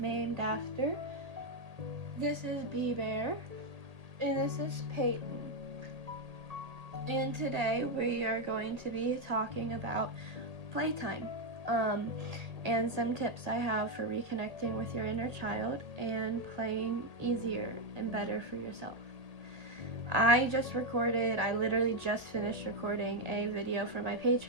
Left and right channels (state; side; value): late; left; 1.9 ms